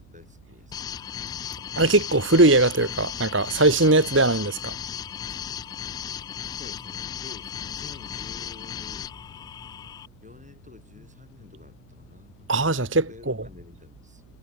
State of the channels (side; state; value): right; noise; hum, 29 dB below the sound